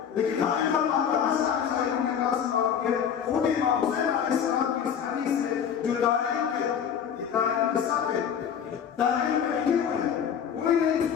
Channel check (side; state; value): right; quieter; 8.1 dB